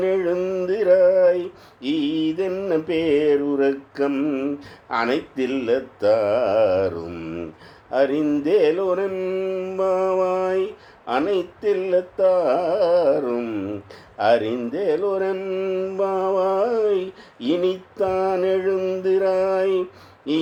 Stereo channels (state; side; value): identical; both; correlation 1.00